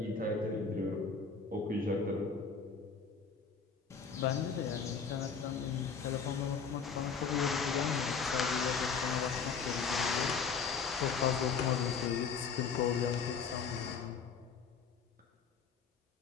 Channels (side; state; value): right; quieter; 5.7 dB